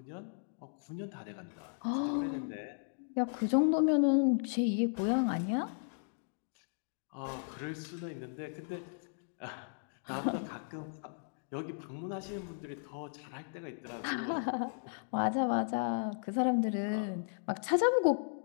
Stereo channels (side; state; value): right; silent; digital silence